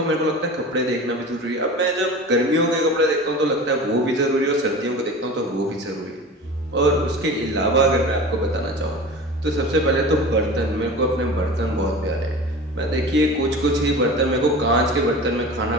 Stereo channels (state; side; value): normal; both; correlation 0.35